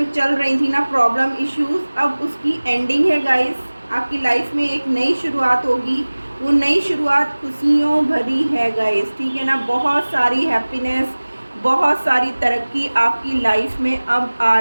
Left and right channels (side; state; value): both; inverted; correlation -1.00